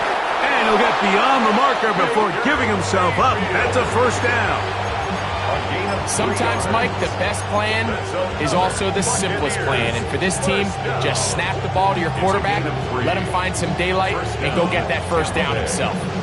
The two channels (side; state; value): both; identical; correlation 1.00